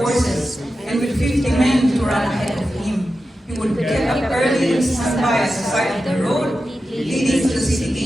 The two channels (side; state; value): both; normal; correlation 0.91